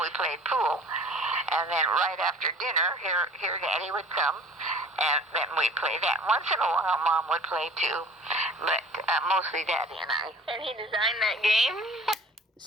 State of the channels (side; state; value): both; normal; correlation 0.46